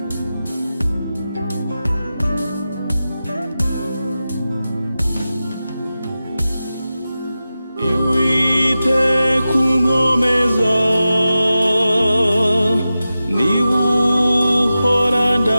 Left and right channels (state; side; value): inverted; both; correlation -0.93